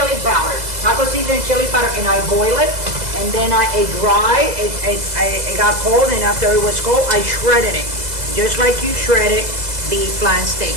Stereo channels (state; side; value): late; left; 2.0 ms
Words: powder, taco seasoning, chili powder, and I boil it, and then it got cold, and after it was cold, I shredded it, just like you shredded beef flan steak.